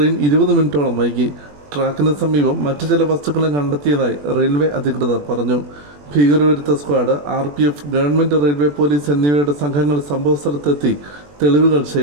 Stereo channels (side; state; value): left; late; 21 ms